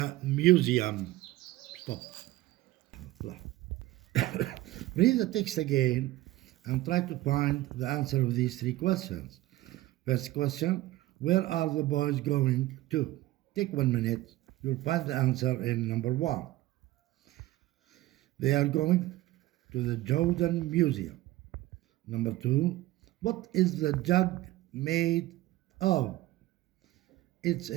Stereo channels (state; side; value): quieter; left; 16.9 dB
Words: museum? Stop. Read the text again and try to find the answer of these 3 questions. First question, where are the boys going to? Take 1 minute. You'll find the answer in number 1. They are going to the Jordan Museum. Number 2, what is the jug made of? It's